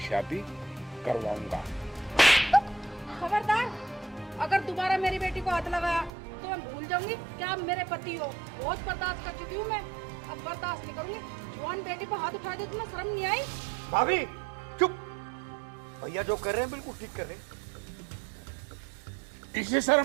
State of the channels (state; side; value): drops out; left; at 6.1 s